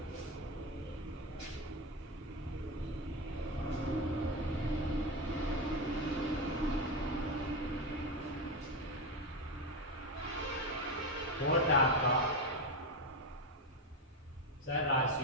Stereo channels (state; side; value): normal; both; correlation 0.14